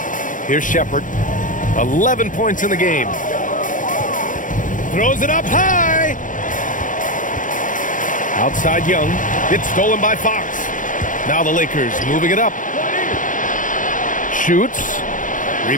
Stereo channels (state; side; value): late; right; 0.38 ms